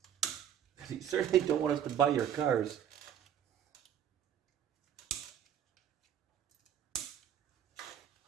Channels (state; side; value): quieter; left; 9.6 dB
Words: You certainly don't want us to buy your cars.